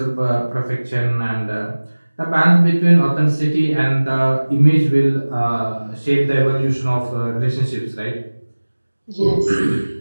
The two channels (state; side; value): inverted; both; correlation -1.00